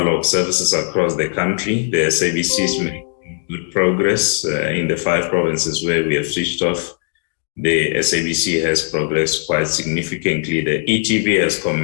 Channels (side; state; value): right; silent; 63 dB below the other